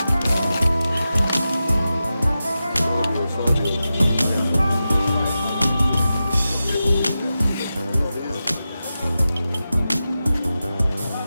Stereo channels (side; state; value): both; inverted; correlation -0.92